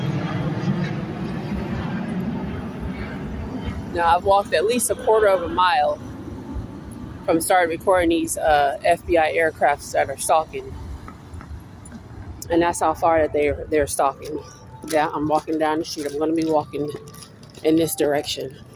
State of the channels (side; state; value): both; identical; correlation 1.00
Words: Now, I've walked at least a quarter of a mile from starting recording these FBI aircrafts that are stalking. And that's how far that they're stalking. Yeah, I'm walking down the street. I'm going to be walking in this direction.